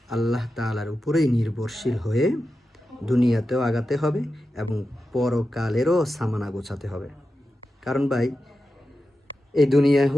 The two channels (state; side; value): normal; both; correlation 0.91